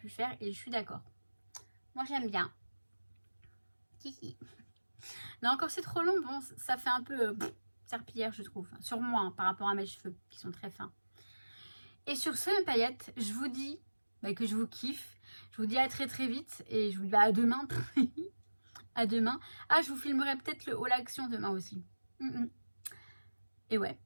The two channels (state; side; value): inverted; both; correlation -1.00